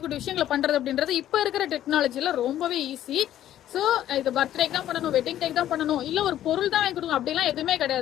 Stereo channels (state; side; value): quieter; right; 12.1 dB